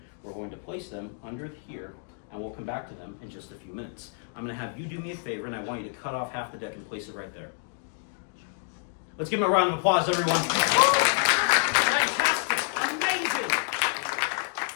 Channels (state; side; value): silent; right; digital silence